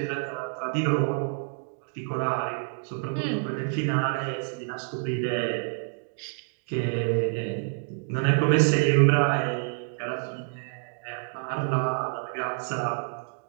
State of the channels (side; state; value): left; silent; digital silence